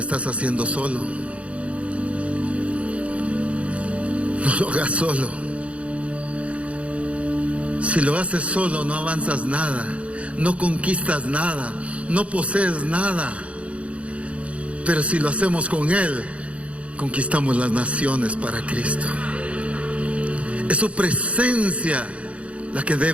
haciendo solo. No lo hagas solo. Si lo haces solo, no avanzas nada, no conquistas nada, no posees nada. Pero si lo hacemos con Él, conquistamos las naciones para Cristo. Es su presencia la que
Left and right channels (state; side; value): late; left; 0.063 ms